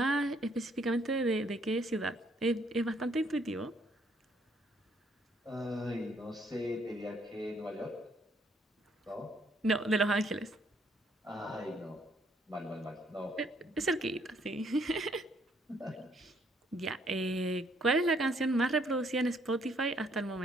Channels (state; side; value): normal; both; correlation 0.67